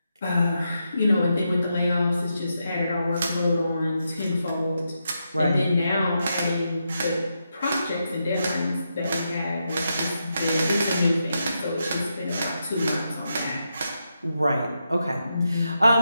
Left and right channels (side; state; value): both; inverted; correlation -0.84